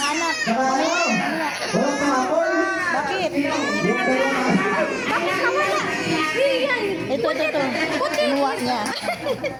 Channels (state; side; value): identical; both; correlation 1.00